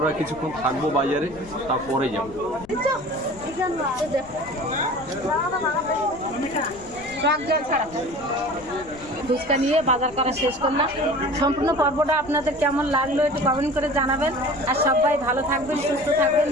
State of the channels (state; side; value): noise; left; rumble, 20 dB below the sound